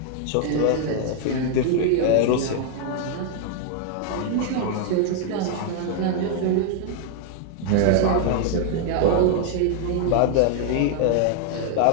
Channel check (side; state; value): both; different; correlation 0.00